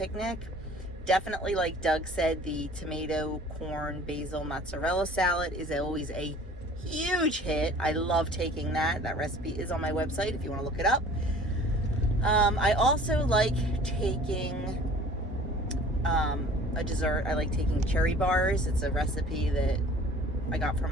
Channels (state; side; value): normal; both; correlation 0.48